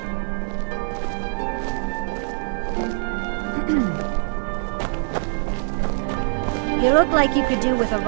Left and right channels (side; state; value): left; silent; digital silence